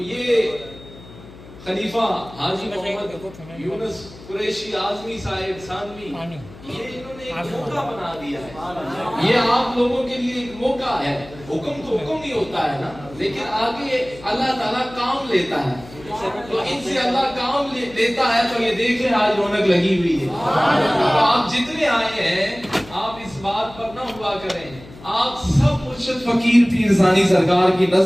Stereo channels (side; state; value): left; noise; hum, 19 dB below the sound